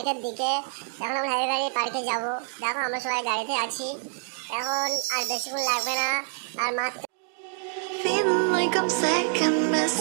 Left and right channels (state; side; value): silent; left; 57 dB below the other